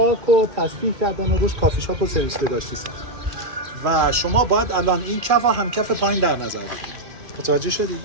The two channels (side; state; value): left; late; 2.4 ms